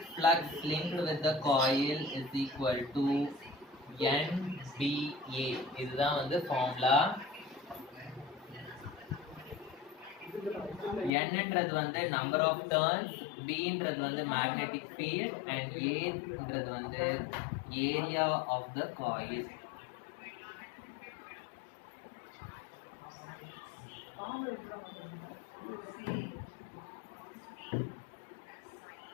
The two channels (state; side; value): drops out; right; at 11.1 s